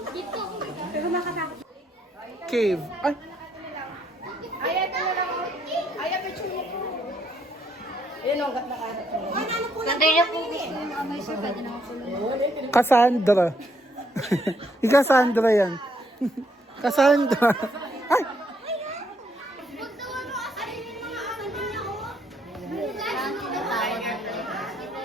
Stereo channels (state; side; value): normal; both; correlation 0.72